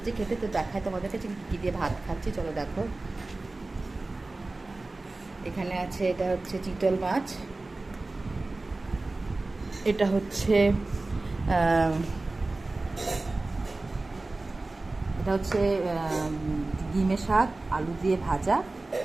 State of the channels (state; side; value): quieter; left; 3.1 dB